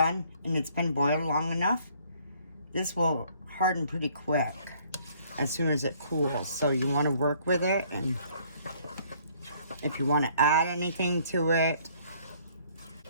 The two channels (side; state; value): both; inverted; correlation -0.61